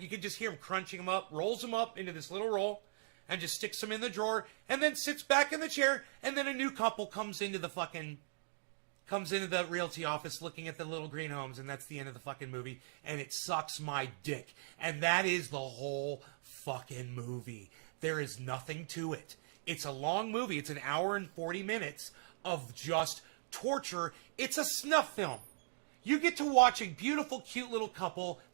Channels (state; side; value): silent; left; digital silence